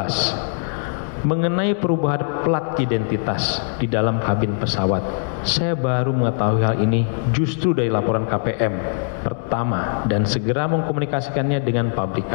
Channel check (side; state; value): right; silent; digital silence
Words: Mengenai perubahan plat identitas di dalam kabin pesawat, saya baru mengetahui hal ini justru dari laporan KPM pertama dan segera mengkomunikasikannya dengan